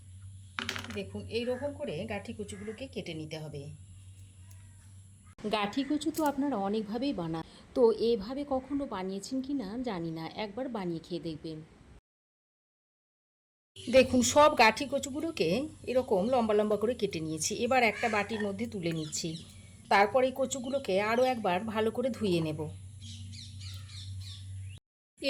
দেখুন, এই রকম করে গাঠি কচুগুলোকে কেটে নিতে হবে। গাঠি কচু তো আপনারা অনেকভাবেই বানান, তো এভাবে কখনো বানিয়েছেন কি না জানি না, একবার বানিয়ে খেয়ে দেখবেন। দেখুন, সব গাঠি কচুগুলোকে এরকম লম্বা লম্বা করে কেটে নিয়েছি। এবার একটা বাটির মধ্যে তুলে নিচ্ছি। তারপর এই কচুগুলোকে আরও একবার ভালো করে ধুয়ে নেব।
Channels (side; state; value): both; identical; correlation 1.00